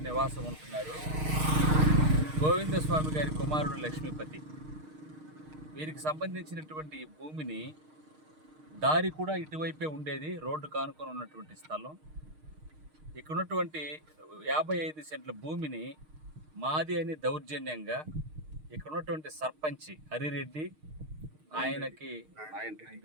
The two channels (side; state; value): left; late; 6.5 ms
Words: నివాసం ఉంటున్నారు. గోవిందస్వామి గారి కుమారుడు లక్ష్మీపతి. వీరికి సంబంధించినటువంటి భూమిని దారి కూడా ఇటువైపే ఉండేది, రోడ్డు కానుకొని ఉన్నటువంటి స్థలం. ఇక్కడ ఉన్నటువంటి 55 సెంట్ల భూమిని మాది అని దౌర్జన్యంగా ఇక్కడ ఉన్నటువంటి సర్పంచ్ హరిరెడ్డి, ఆయనకి